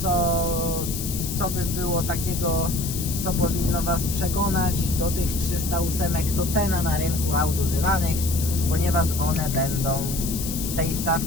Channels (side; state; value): left; noise; hiss, 6 dB below the sound